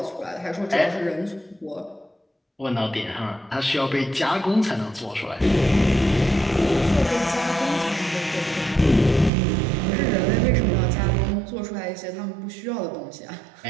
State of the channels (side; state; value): left; drops out; at 9.3 s